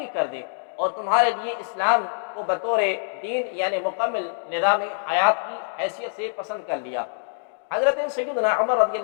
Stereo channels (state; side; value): silent; right; digital silence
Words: کر دی، اور تمہارے لیے اسلام کو بطور دین یعنی مکمل نظام حیات کی حیثیت سے پسند کر لیا۔ حضرت سیدنا عمر رضی